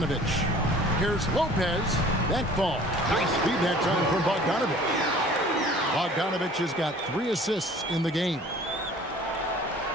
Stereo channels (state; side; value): normal; both; correlation 0.49